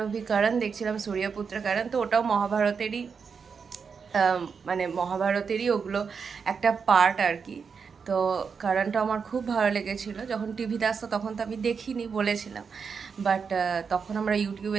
অভি করণ দেখছিলাম, সূর্যপুত্র করণ, তো ওটাও মহাভারতেরই মানে মহাভারতেরই ওগুলো একটা পার্ট আর কি। তো কারণটা আমার খুব ভালো লেগেছিলো। যখন টিভিতে আসতো তখন তো আমি দেখিনি, বলেছিলাম, বাট তখন আমরা ইউটিউবে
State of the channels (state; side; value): quieter; left; 5.9 dB